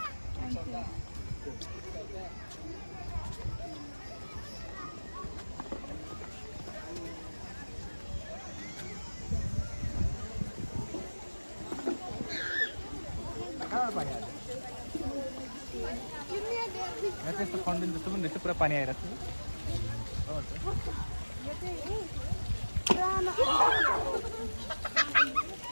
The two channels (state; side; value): inverted; both; correlation -1.00